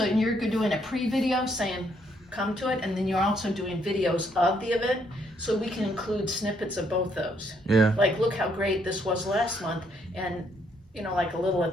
you're doing a pre-video saying, come to it, and then you're also doing videos of the event, so we can include snippets of both those. Yeah. Like, look how great this was last month, and, you know, like a little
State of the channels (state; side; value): normal; both; correlation 0.71